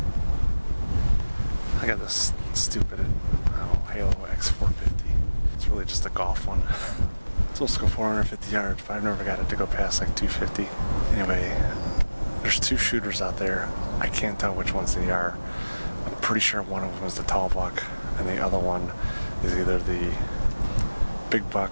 I got this stupid Halo X450. It's really just a golf one. It's supposed to go 450 yards, but I've never got it to go past like 250. Anyway, there's 2 shooters out there. I can't tell which ones they are. I'm pretty sure one of them is the tall buck, and the other one is either the big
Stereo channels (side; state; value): both; inverted; correlation -1.00